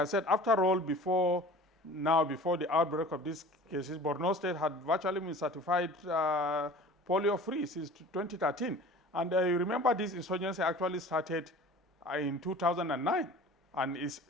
said, after all, before the outbreak of these cases, Borno State had virtually been certified polio-free since 2013. And you remember this insurgency actually started in 2009. And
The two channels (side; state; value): both; normal; correlation 0.43